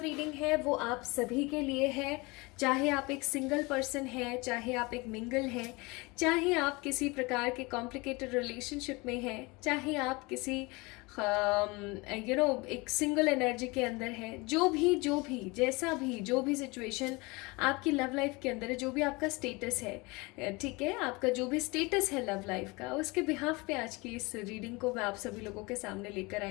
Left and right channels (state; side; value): quieter; right; 25.3 dB